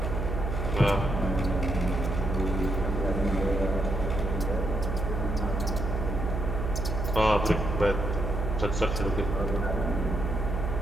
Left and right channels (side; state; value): right; noise; hum, 2 dB below the sound